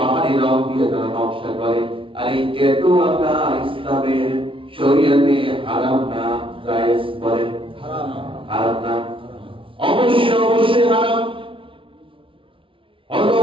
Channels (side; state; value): left; late; 0.25 ms